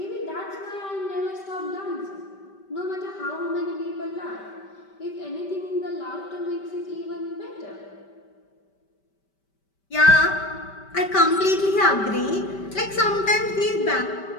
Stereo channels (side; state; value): right; late; 5.1 ms